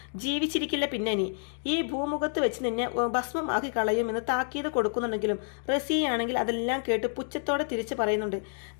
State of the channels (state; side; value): silent; right; 59 dB below the other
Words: ജീവിച്ചിരിക്കില്ല പിന്നെ നീ. ഈ ഭൂമുഖത്ത് വെച്ച് നിന്നെ ഭസ്മമാക്കി കളയുമെന്ന് താക്കീത് കൊടുക്കുന്നുണ്ടെങ്കിലും റസിയാണെങ്കിൽ അതെല്ലാം കേട്ട് പുച്ഛത്തോടെ തിരിച്ചു പറയുന്നുണ്ട്,